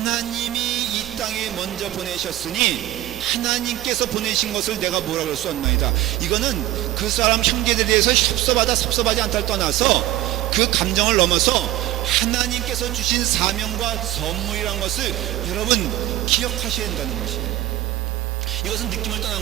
이 땅에 먼저 보내셨으니 하나님께서 보내신 것을 내가 뭐라고 할 수 없나이다. 이거는 그 사람 형제들에 대해서 섭섭하지 않다를 떠나서 그 감정을 넘어서 하나님께서 주신 사명과 선물이란 것을 여러분 기억하셔야 된다는 것이에요. 이것은 느낌을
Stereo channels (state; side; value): quieter; left; 15.2 dB